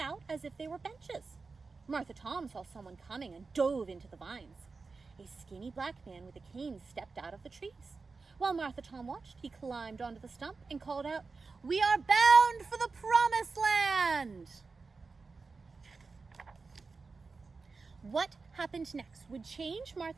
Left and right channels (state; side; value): quieter; left; 4.3 dB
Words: as if they were benches. Martha Tom saw someone coming and dove into the vines. A skinny black man with a cane stepped out of the trees. While Martha Tom watched, he climbed onto the stump and called out, "We are bound for the Promised Land!" What happened next would change